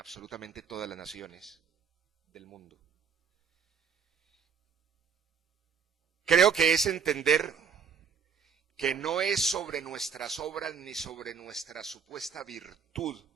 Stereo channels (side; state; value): left; quieter; 6.5 dB